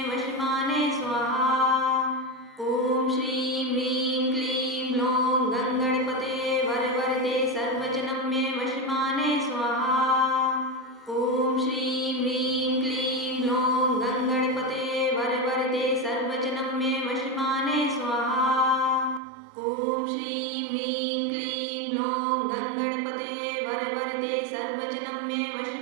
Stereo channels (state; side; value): drops out; left; at 19.2 s